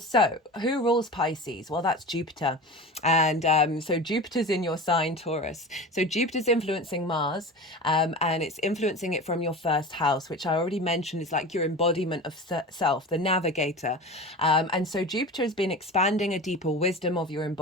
who rules Pisces? Well, that's Jupiter. And so Jupiter's in your sign, Taurus. So Jupiter's influencing Mars, and it's influencing it from your first house, which I already mentioned is like your embodiment of self, the navigator. And so Jupiter has been expanding a deeper wisdom of your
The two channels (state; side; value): normal; both; correlation 0.32